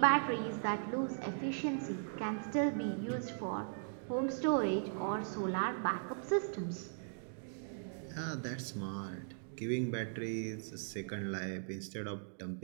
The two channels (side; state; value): left; silent; digital silence